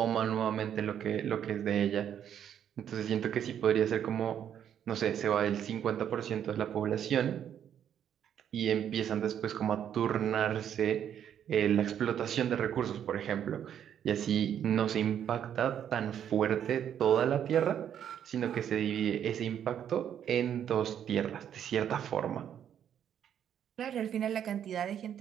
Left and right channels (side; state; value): left; quieter; 9.4 dB